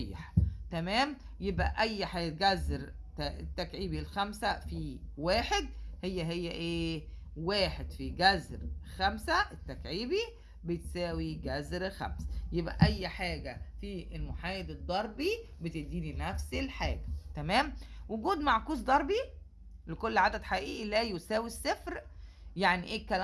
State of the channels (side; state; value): both; identical; correlation 1.00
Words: تمام. يبقى اي حاجه جذر التكعيبي الخمسة في واحد هي ايه؟ واحد في جذر 5 التكعيبي بتساوي جذر 5. يبقى اي حاجه في المحايد الضربي بتديني نفس الحاجه. تمام. وجود معكوس ضربي لكل عدد حقيقي لا يساوي الصفر. يعني ايه